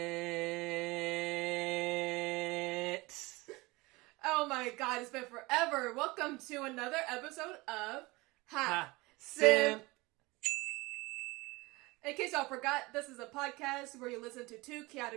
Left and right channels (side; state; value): left; quieter; 22.8 dB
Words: Oh my god, it's been forever. Welcome to another episode of SIMP. In case y'all forgot, this is a podcast where you listen to two